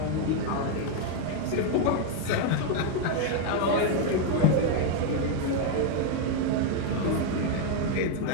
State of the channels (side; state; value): both; different; correlation 0.01